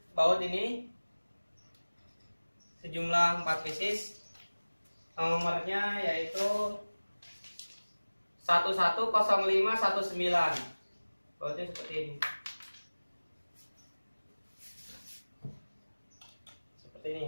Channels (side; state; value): both; inverted; correlation -1.00